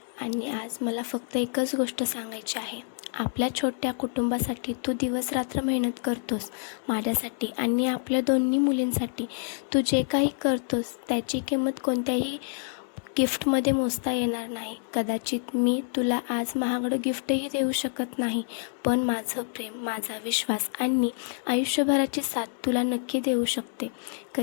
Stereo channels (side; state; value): right; silent; digital silence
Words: आणि आज मला फक्त एकच गोष्ट सांगायची आहे. आपल्या छोट्या कुटुंबासाठी तू दिवसरात्र मेहनत करतोस, माझ्यासाठी आणि आपल्या दोन्ही मुलींसाठी. तू जे काही करतोस त्याची किंमत कोणत्याही गिफ्टमध्ये मोजता येणार नाही. कदाचित मी तुला आज महागडं गिफ्टही देऊ शकत नाही, पण माझं प्रेम, माझा विश्वास आणि आयुष्यभराची साथ तुला नक्की देऊ शकते.